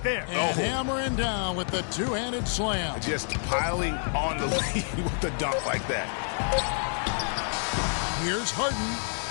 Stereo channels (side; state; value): right; silent; 59 dB below the other